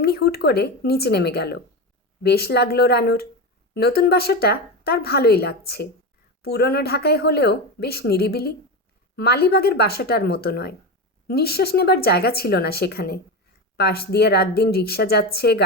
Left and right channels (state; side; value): normal; both; correlation 0.19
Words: হুট করে নিচে নেমে গেল। বেশ লাগলো রানুর। নতুন বাসাটা তার ভালোই লাগছে। পুরনো ঢাকায় হলেও বেশ নিরিবিলি। মালিবাগের বাসাটার মতো নয়। নিঃশ্বাস নেবার জায়গা ছিল না সেখানে। পাশ দিয়ে রাত দিন রিক্সা যাচ্ছে,